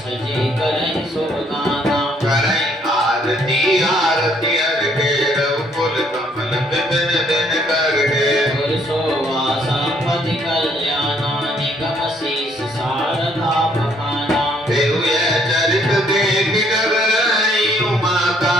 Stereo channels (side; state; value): both; normal; correlation 0.66